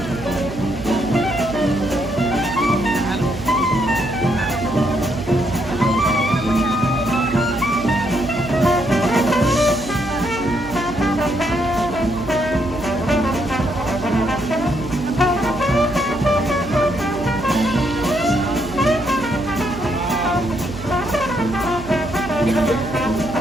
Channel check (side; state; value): right; noise; hum, 12 dB below the sound